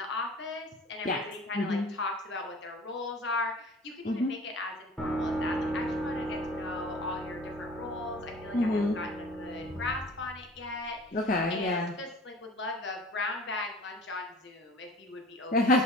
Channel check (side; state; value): both; normal; correlation 0.45